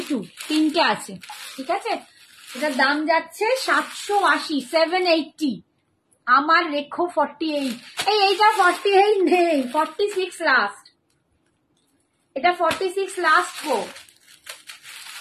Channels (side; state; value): both; identical; correlation 1.00